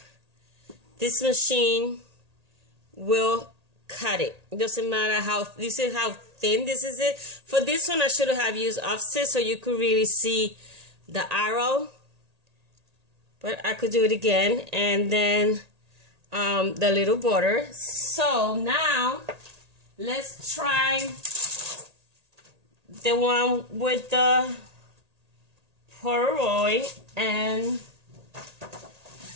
This machine will cut it. It doesn't matter how, this is how thin this is it. For this one, I should have used offset so you could really see the arrow. But I could do it again. And then the little border. So now, let's try the one with the Polaroid and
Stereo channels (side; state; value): left; late; 1.8 ms